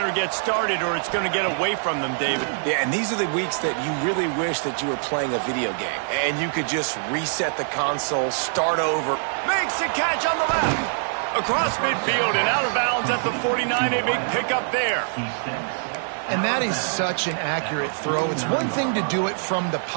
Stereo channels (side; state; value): left; silent; digital silence